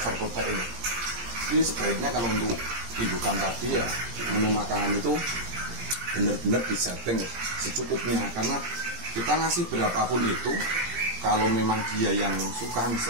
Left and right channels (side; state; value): left; late; 17 ms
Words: protein. Jadi sebaiknya kalau untuk indukan tadi ya menu makanan itu benar-benar disetting secukupnya, karena kita ngasih berapapun itu, kalau memang dia yang suka,